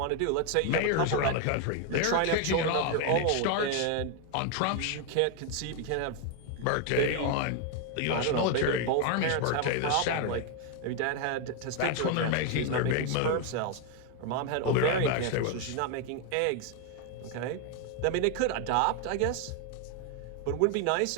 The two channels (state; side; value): different; both; correlation 0.01